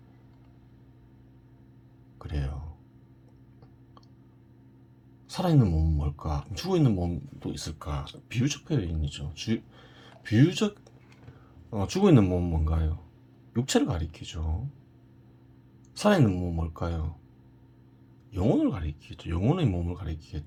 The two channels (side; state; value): both; identical; correlation 1.00